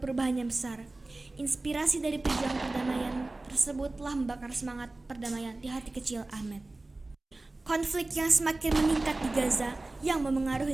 perubahan yang besar. Inspirasi dari pejuang perdamaian tersebut telah membakar semangat perdamaian di hati kecil Ahmed. Konflik yang semakin meningkat di Gaza yang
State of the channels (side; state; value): left; quieter; 3.0 dB